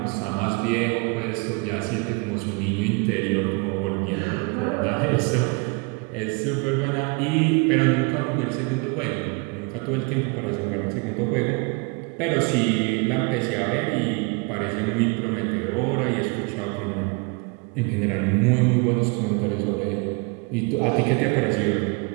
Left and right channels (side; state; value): left; quieter; 30.6 dB